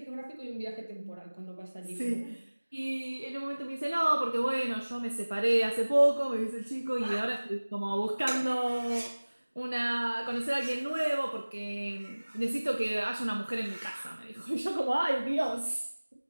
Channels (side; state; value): both; inverted; correlation -1.00